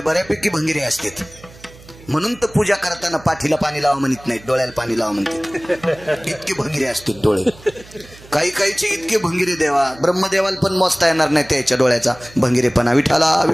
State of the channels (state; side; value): noise; right; hum, 22 dB below the sound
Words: भंगिरे असतात. म्हणून तर पूजा करताना पाठीला पाणी लावा म्हणत नाहीत, डोळ्याला पाणी लावा म्हणतात. इतके भंगिरे असतात डोळे. काहीचे इतके भंगिरे देवा ब्रह्मदेवाला पण मोजता येणार नाही त्याच्या डोळ्याचा भंगिरेपणा. विठाला